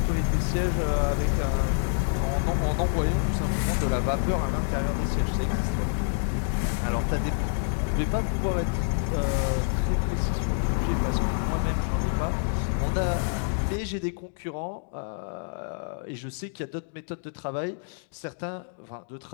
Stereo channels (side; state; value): right; silent; digital silence